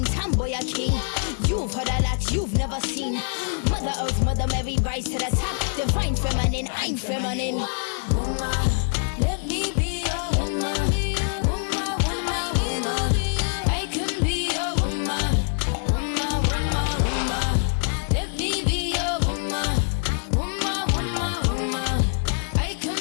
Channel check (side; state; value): right; silent; 62 dB below the other